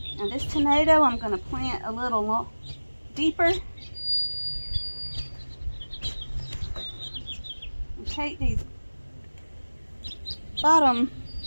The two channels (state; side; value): inverted; both; correlation -1.00